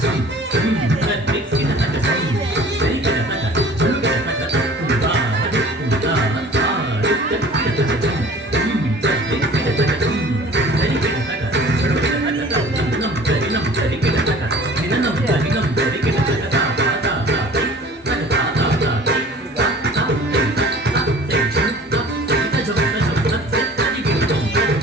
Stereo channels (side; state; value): both; normal; correlation 0.46